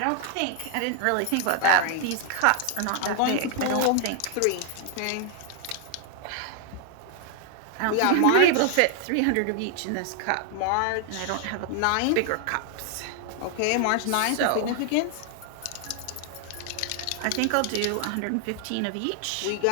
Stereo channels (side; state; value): both; different; correlation 0.00